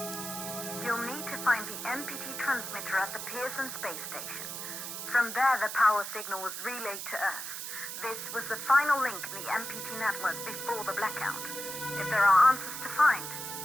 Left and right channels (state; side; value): noise; right; hiss, 6 dB below the sound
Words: You'll need to find the MPT transmitter at the Pearson space station. From there, the power signal was relayed to Earth. This was the final link in the MPT network before the blackout. If there are answers to find,